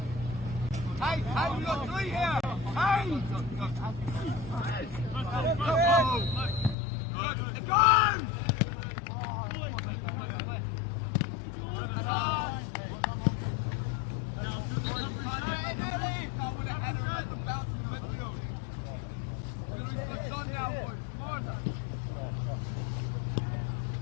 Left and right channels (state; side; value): drops out; right; at 6.8 s